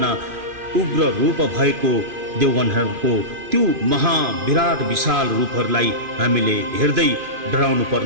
उग्र रूप भएको देवगणहरूको त्यो महाविराट विशाल रूपहरूलाई हामीले हेर्दै डराउनु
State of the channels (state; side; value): late; left; 2.5 ms